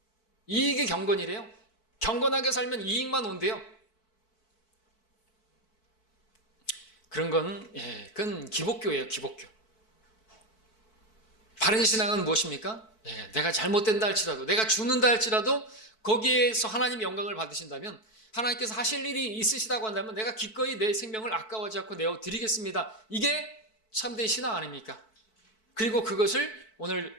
이익이 경건이래요. 경건하게 살면 이익만 온대요. 그런 건, 그건 기복교예요, 기복교. 바른 신앙은 무엇입니까? 내가 잘못된다 할지라도, 내가 죽는다 할지라도 거기에서 하나님의 영광을 받으신다면, 하나님께서 하실 일이 있으시다고 한다면 내가 기꺼이 내 생명을 아까워하지 않고 내어드리겠습니다. 이게 참된 신앙 아닙니까? 그리고 그것을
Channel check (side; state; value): right; late; 4.6 ms